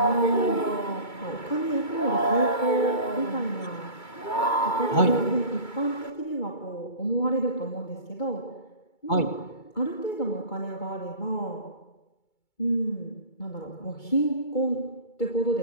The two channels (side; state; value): right; late; 2.2 ms